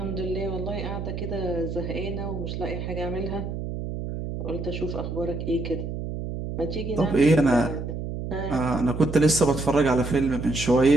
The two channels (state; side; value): noise; right; hum, 5 dB below the sound